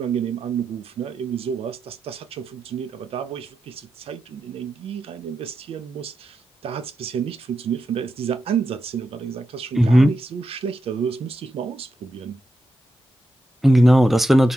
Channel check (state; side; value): normal; both; correlation 0.88